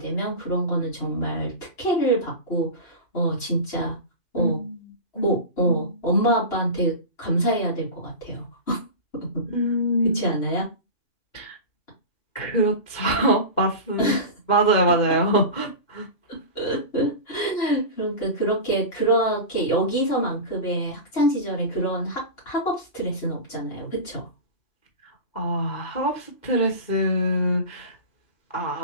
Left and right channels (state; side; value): late; right; 2.1 ms